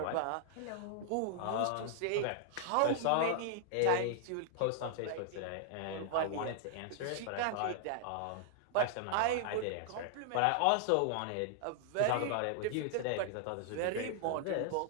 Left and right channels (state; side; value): different; both; correlation 0.00